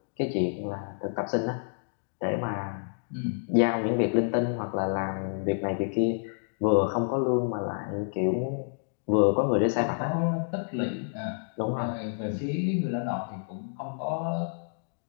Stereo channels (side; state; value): right; silent; digital silence